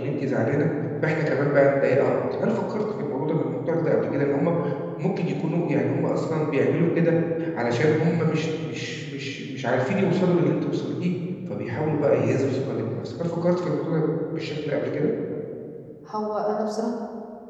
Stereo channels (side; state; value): both; identical; correlation 1.00